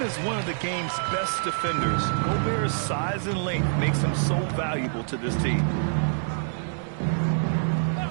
as one of the game's best defenders, Gobert's size and length makes him so valuable to this team.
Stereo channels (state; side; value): silent; left; digital silence